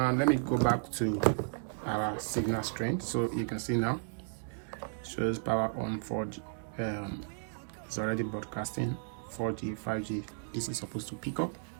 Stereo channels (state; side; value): silent; left; digital silence